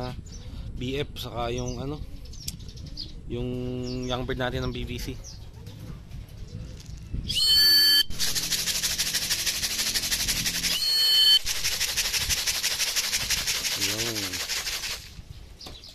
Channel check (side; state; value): both; identical; correlation 1.00